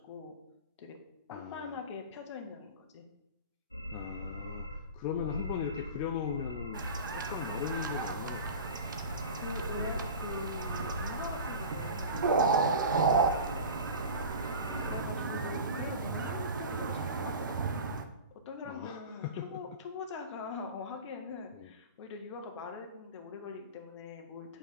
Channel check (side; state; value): both; inverted; correlation -0.33